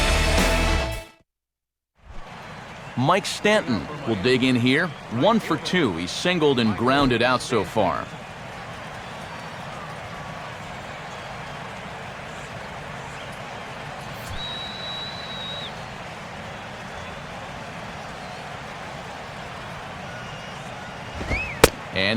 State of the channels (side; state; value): both; identical; correlation 1.00